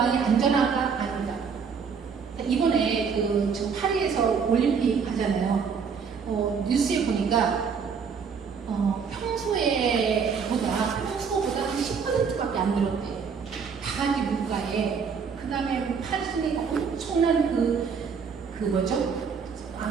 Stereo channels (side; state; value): left; quieter; 6.1 dB